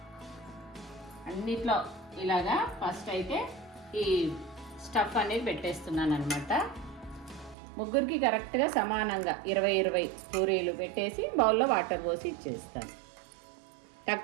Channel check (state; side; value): drops out; left; at 7.6 s